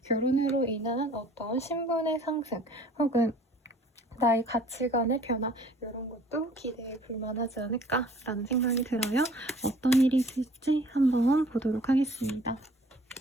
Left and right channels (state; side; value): normal; both; correlation 0.53